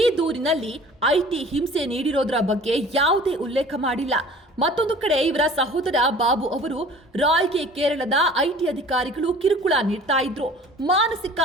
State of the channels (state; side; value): normal; both; correlation 0.46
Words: ದೂರಿನಲ್ಲಿ ಐಟಿ ಹಿಂಸೆ ನೀಡಿರೋದ್ರ ಬಗ್ಗೆ ಯಾವುದೇ ಉಲ್ಲೇಖ ಮಾಡಿಲ್ಲ. ಮತ್ತೊಂದು ಕಡೆ ಇವರ ಸಹೋದರ ಬಾಬು ಅವರು ರಾಯ್ಗೆ ಕೇರಳದ ಐಟಿ ಅಧಿಕಾರಿಗಳು ಕಿರುಕುಳ ನೀಡ್ತಾ ಇದ್ರು, ಮಾನಸಿಕ